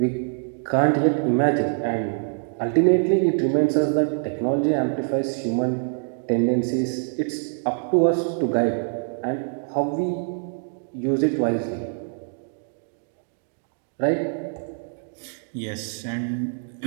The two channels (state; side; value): silent; left; 62 dB below the other